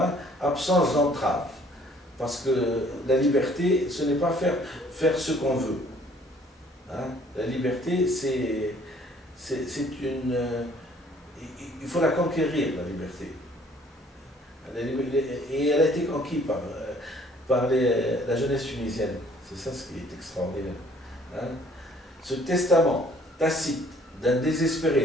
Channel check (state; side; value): normal; both; correlation 0.58